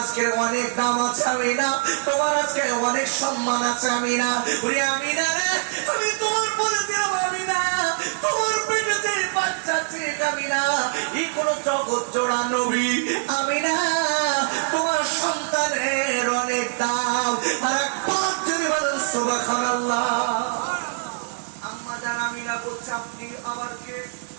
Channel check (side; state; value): left; silent; digital silence